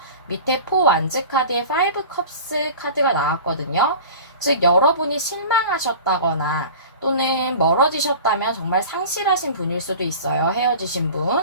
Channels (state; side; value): inverted; both; correlation -0.38